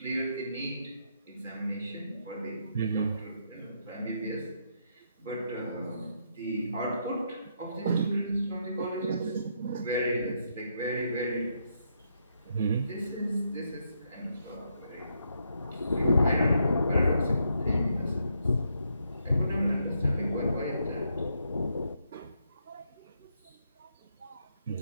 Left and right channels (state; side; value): inverted; both; correlation -0.77